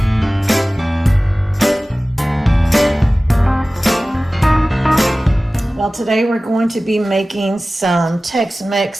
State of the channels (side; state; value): both; normal; correlation 0.97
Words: Well, today we're going to be making some